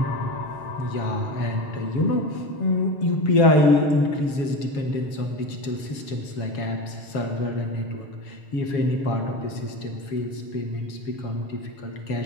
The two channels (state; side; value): late; right; 7.3 ms